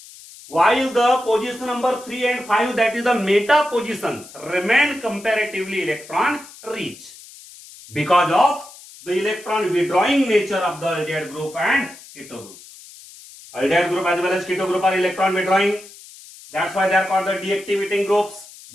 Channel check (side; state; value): left; noise; hiss, 19 dB below the sound